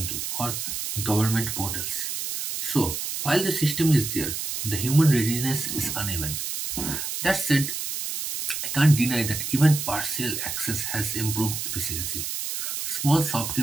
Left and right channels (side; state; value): right; noise; hiss, 4 dB below the sound